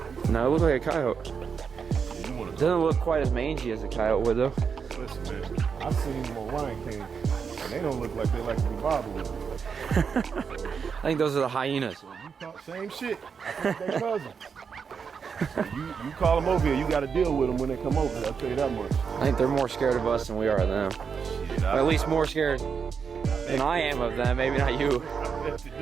No, it looked like a coyote. You wanna Doesn't look quite as mangy as a coyote would though. Listen, man, I've seen them on Lion King, and they don't look like they like to be bothered with. I think those are the hyenas. So you talk same shit. I think they cousins. So you call them over here, you got to deal with them when they come over. I'll tell you that much. I think they're more scared of us than we are of them. Shit, Or at least more scared than I am of them. Maybe not you. I bet you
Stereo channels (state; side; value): quieter; left; 6.2 dB